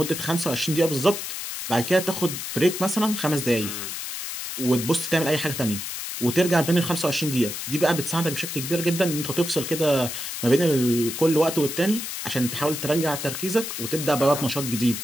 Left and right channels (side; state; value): left; noise; hiss, 6 dB below the sound